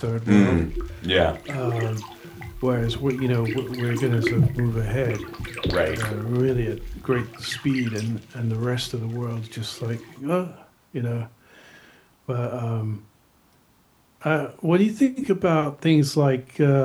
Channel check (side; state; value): both; identical; correlation 1.00